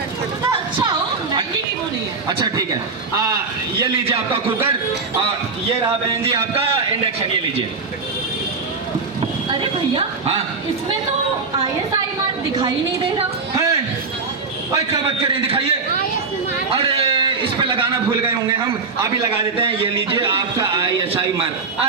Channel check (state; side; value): quieter; left; 4.5 dB